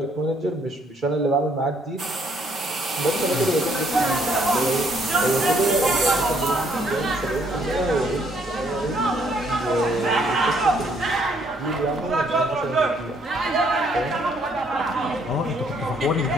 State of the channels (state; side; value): normal; both; correlation 0.67